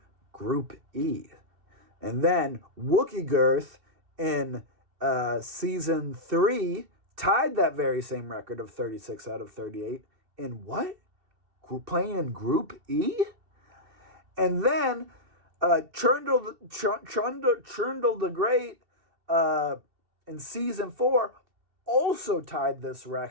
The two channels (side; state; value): left; late; 2.7 ms